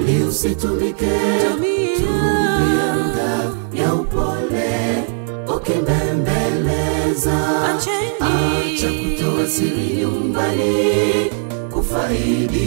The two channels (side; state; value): left; silent; 58 dB below the other